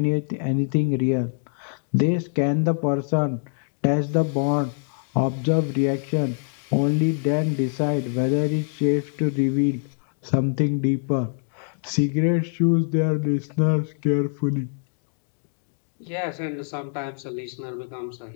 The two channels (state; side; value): silent; right; digital silence